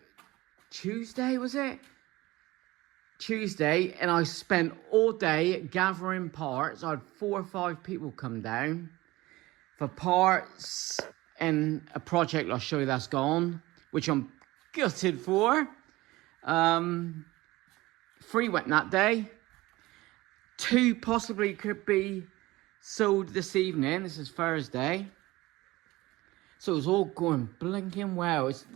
Tuesday, was it? Tuesday, and I spent all day gathering parts. I had 4 or 5 people come down for parts and a project I'll show you that's gone, which I'm gutted for. 3 went that day. 2 possibly could be sold this evening. This is Thursday. So it's all going blinking well.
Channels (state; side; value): quieter; left; 19.4 dB